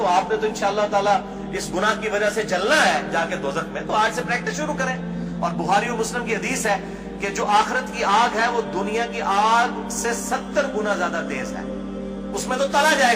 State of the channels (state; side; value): identical; both; correlation 1.00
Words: آپ نے تو انشاءاللہ تعالیٰ اس گناہ کی وجہ سے جلنا ہے جا کے دوزخ میں، تو آج سے پریکٹس شروع کریں۔ اور بخاری و مسلم کی حدیث ہے کہ جو آخرت کی آگ ہے وہ دنیا کی آگ سے 70 گنا زیادہ تیز ہے، اس میں تو تلا